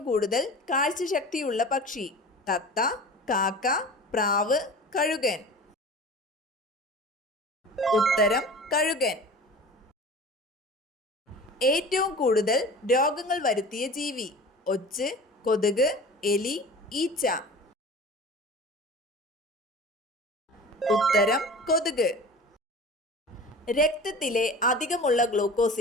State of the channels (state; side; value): normal; both; correlation 0.38